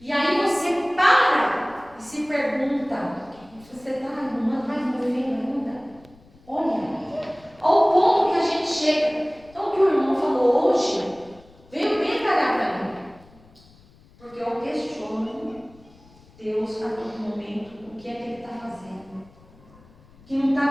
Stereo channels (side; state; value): left; noise; rumble, 26 dB below the sound